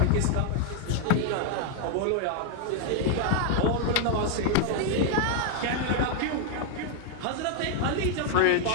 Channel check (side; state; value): both; different; correlation 0.00